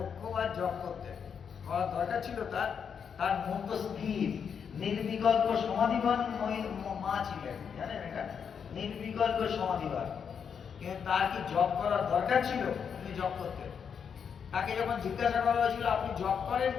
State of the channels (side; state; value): right; quieter; 7.0 dB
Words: জপ করতেন, করার দরকার ছিল তার? তার মন তো স্থির, নির্বিকল্প সমাধিবান মা ছিলেন, জানেন এটা? নির্বিকল্প সমাধিবান। কিন্তু তার কি জপ করার দরকার ছিল? তিনি জপ করতেন। তাকে যখন জিজ্ঞাসা করা হয়েছিল আপনি জপ করেন